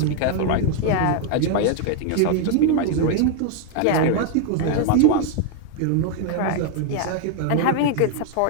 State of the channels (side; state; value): both; different; correlation 0.00